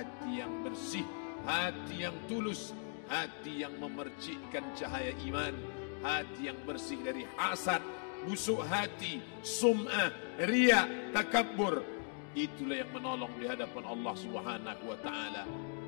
yang bersih, hati yang tulus, hati yang memercikkan cahaya iman, hati yang bersih dari hasad, busuk hati, sum'ah, riya, takabbur. Itulah yang menolong di hadapan Allah Subhanahu wa taala.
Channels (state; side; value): silent; right; 52 dB below the other